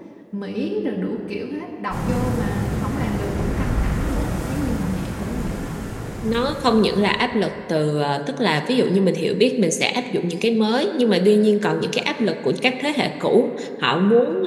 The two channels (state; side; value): identical; both; correlation 1.00